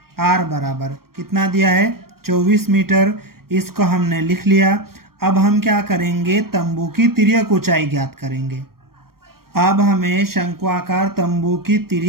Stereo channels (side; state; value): left; late; 0.94 ms